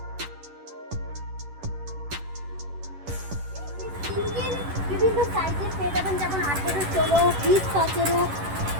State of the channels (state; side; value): late; left; 11 ms